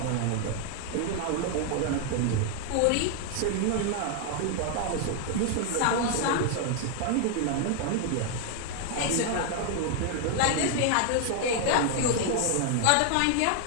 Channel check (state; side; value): different; both; correlation 0.00